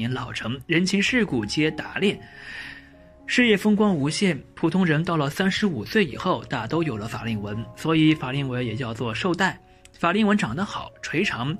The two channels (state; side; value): identical; both; correlation 1.00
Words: 老成，人情世故皆打练，事业风光无限。普通人到了35岁以后大都有了法令纹，所以法令纹也叫做寿带。法令纹长得好垂长，